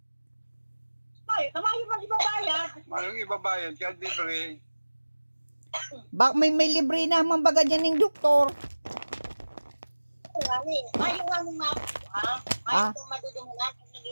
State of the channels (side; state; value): both; inverted; correlation -1.00